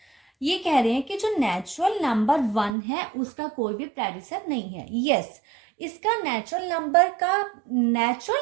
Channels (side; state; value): left; drops out; at 2.8 s